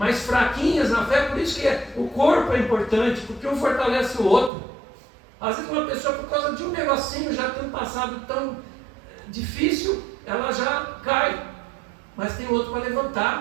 fraquinhas na fé, por isso que o corpo é importante, porque um fortalece o outro. Às vezes uma pessoa, por causa de um negocinho, já tem um passado tão difícil, ela já cai, mas tem outro para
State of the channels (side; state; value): left; drops out; at 4.5 s